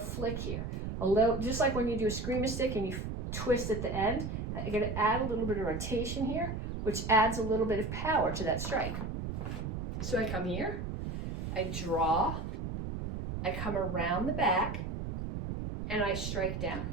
here. A little, just like when you do a screamer stick and you twist at the end, you're going to add a little bit of rotation here, which adds a little bit of power to that strike. So I come here, I draw, I come around the back, and I strike down.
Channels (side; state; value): right; noise; rumble, 4 dB below the sound